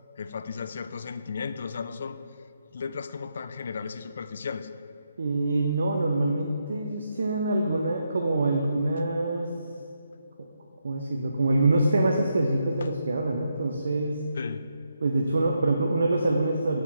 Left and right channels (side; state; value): both; inverted; correlation -0.81